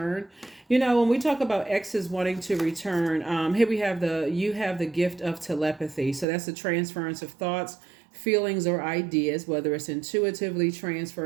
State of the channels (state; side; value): drops out; left; at 6.2 s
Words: When we talk about exes wanting to return, here we have you have the gift of telepathy. So that's the transference of thoughts, feelings, or ideas, whether it's intuitively